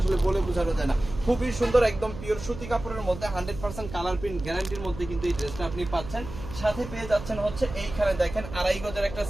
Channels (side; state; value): right; noise; hum, 11 dB below the sound